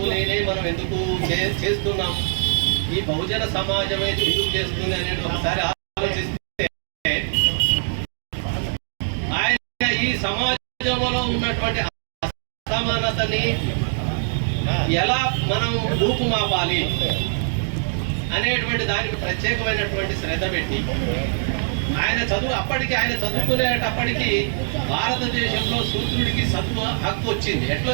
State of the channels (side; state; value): left; silent; digital silence